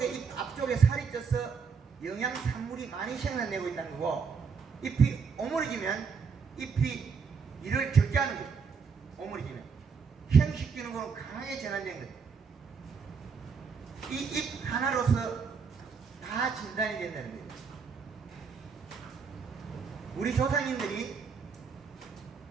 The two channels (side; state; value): left; quieter; 5.6 dB